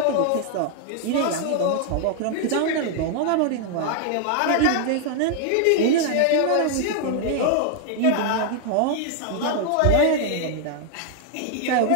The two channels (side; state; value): both; different; correlation 0.00